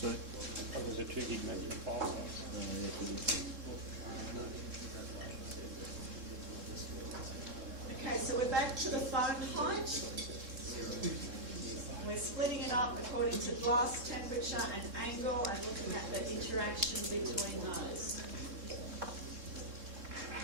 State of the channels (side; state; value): left; late; 3.7 ms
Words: Oh, there's a 2 gig maximum file size. Okay, so we're back to the foam height. We're splitting it up according to glass temperature and angle and looking at the interaction between those.